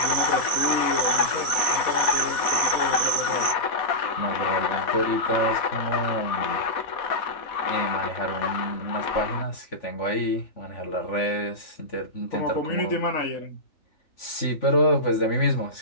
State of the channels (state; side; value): late; right; 4.1 ms